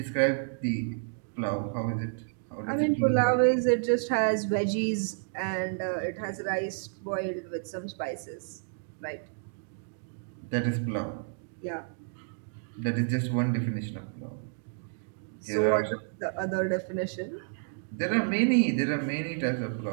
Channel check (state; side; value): silent; left; digital silence